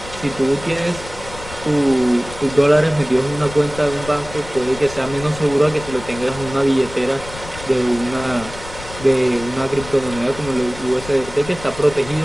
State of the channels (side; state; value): left; noise; rumble, 14 dB below the sound